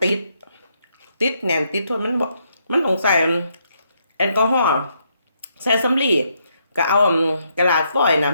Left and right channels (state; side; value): inverted; both; correlation -0.76